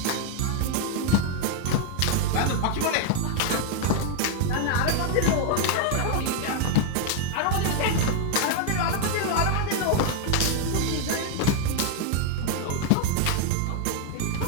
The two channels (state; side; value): different; both; correlation 0.00